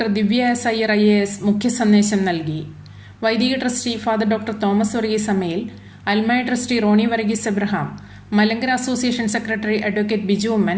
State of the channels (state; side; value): identical; both; correlation 1.00